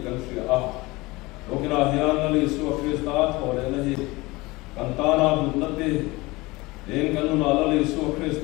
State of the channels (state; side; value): quieter; right; 22.2 dB